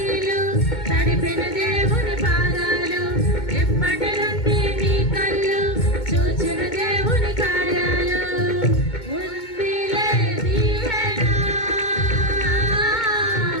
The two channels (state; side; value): late; right; 2.2 ms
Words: తడిపిన దేవుని పాదాలు, ఇప్పటి నుండి నీ కళ్ళు చూచిన దేవుని కార్యాలు. ఉందిలే దీవెన,